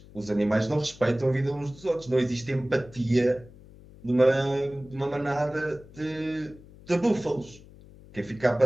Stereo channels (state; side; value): noise; left; hum, 21 dB below the sound